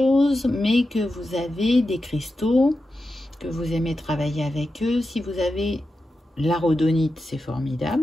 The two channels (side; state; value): both; normal; correlation 0.90